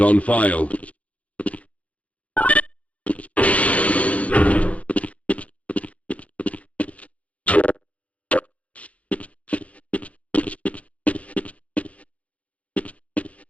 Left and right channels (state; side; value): late; right; 0.066 ms